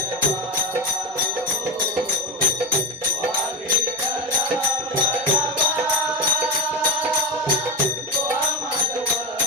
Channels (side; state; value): both; normal; correlation 0.16